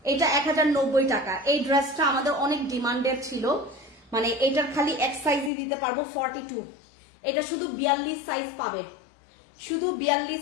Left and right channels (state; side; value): drops out; right; at 5.5 s